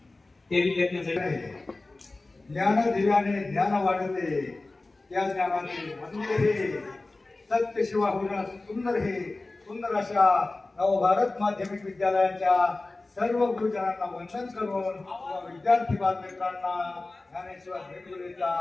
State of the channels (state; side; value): quieter; right; 3.2 dB